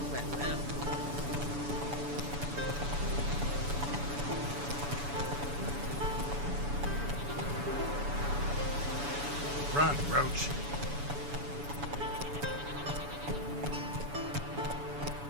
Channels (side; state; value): left; late; 7.0 ms